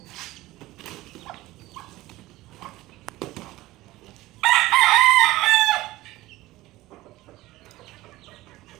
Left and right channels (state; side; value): quieter; left; 17.8 dB